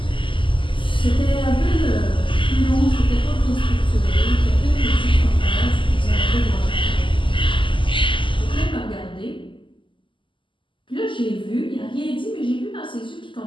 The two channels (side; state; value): right; late; 0.25 ms